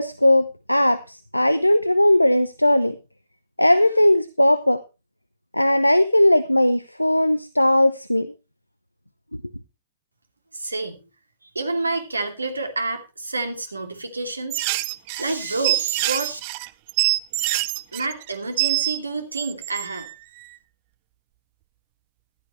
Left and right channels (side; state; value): both; inverted; correlation -0.87